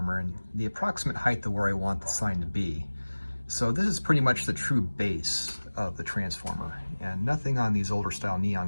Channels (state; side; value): inverted; both; correlation -1.00